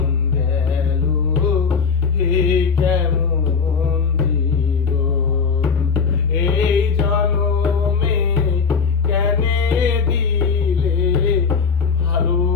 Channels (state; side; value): quieter; right; 5.5 dB